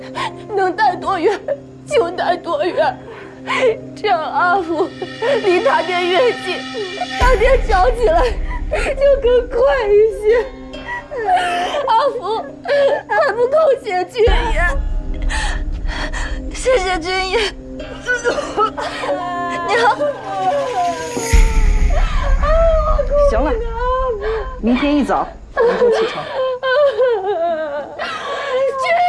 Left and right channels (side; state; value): both; identical; correlation 1.00